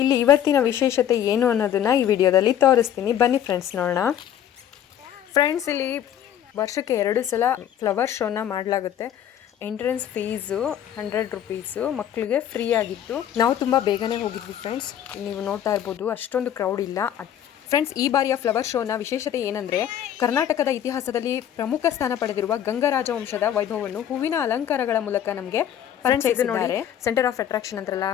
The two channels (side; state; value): right; quieter; 10.3 dB